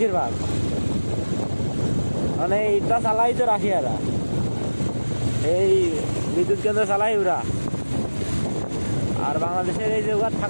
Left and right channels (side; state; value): both; inverted; correlation -1.00